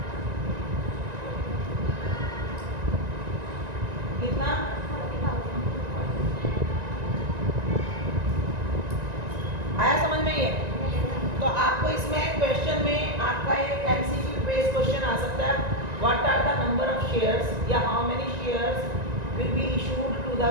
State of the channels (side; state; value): left; late; 1.9 ms